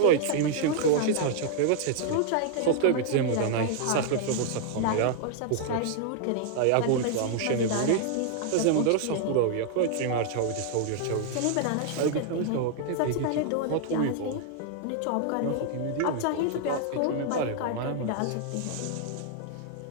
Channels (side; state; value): both; different; correlation 0.00